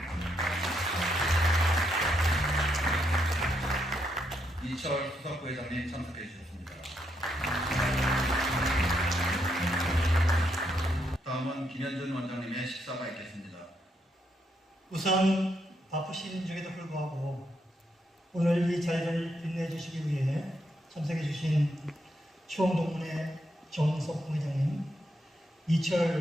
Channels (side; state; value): both; normal; correlation 0.78